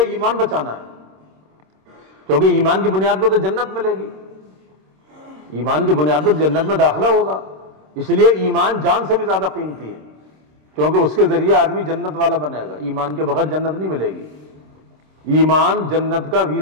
ایمان بچانا ہے، کیونکہ ایمان کی بنیاد پر تو جنت ملے گی، ایمان کی بنیاد پر جنت میں داخلہ ہوگا، اس لیے ایمان جان سے بھی زیادہ قیمتی ہے، کیونکہ اس کے ذریعے آدمی جنت والا بنے گا، ایمان کے بغیر جنت نہیں ملے گی۔ ایمان جنت کا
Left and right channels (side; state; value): left; late; 26 ms